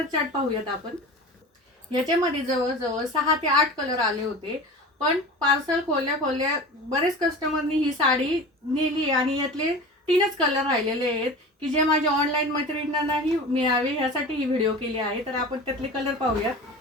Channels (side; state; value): both; normal; correlation 0.34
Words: चार्ट पाहूयात आपण. याच्यामध्ये जवळजवळ 6 ते 8 कलर आले होते. पण पार्सल खोलल्या खोलल्या बरेच कस्टमरनी ही साडी नेली आणि यातले 3च कलर राहिलेले आहेत, की जे माझ्या ऑनलाईन मैत्रिणींनाही मिळावे यासाठी ही व्हिडिओ केली आहे. तर आपण त्यातले कलर पाहूया.